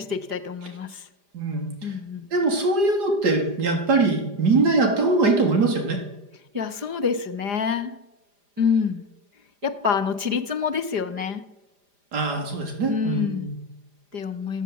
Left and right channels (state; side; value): late; left; 4.9 ms